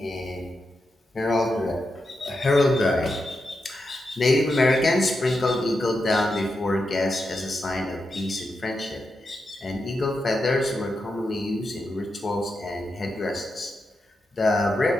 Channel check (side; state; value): both; normal; correlation 0.87